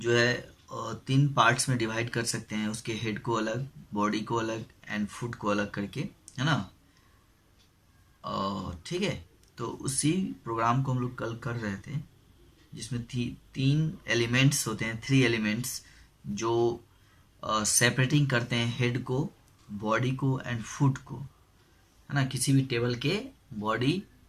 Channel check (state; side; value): identical; both; correlation 1.00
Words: है तीन पार्ट्स में डिवाइड कर सकते हैं, उसके हेड को अलग, बॉडी को अलग एंड फुट को अलग करके, है ना। ठीक है। तो उसी प्रोग्राम को हम लोग कल कर रहे थे, जिसमें तीन एलिमेंट्स होते हैं, थ्री एलिमेंट्स जो सेपरेटिंग करते हैं हेड को, बॉडी को एंड फुट को, है ना। किसी भी टेबल के बॉडी,